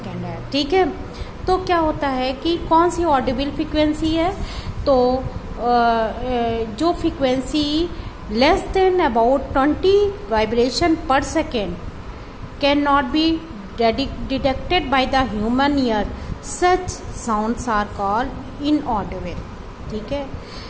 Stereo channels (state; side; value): identical; both; correlation 1.00